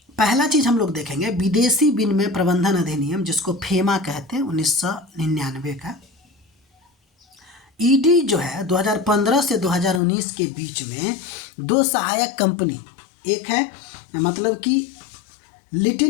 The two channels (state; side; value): drops out; right; at 10.0 s